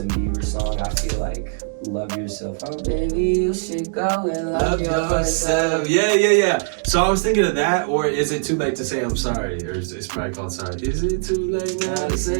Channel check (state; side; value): silent; left; digital silence